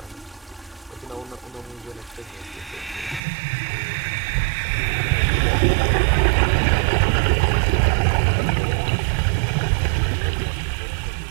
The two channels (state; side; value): drops out; left; at 3.2 s